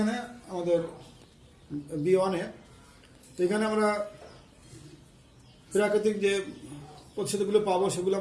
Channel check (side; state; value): both; identical; correlation 1.00